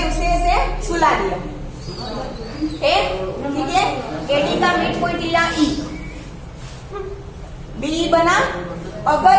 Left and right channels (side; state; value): both; identical; correlation 1.00